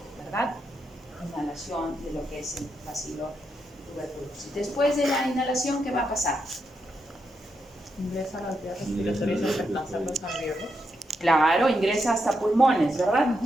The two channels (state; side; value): normal; both; correlation 0.83